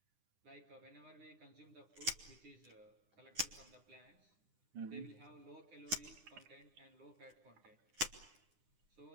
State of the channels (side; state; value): left; late; 9.9 ms